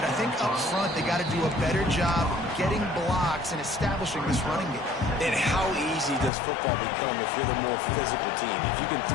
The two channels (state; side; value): drops out; right; at 6.3 s